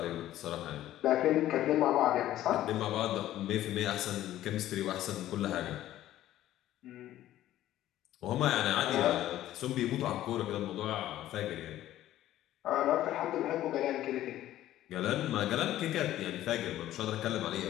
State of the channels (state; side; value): quieter; right; 13.6 dB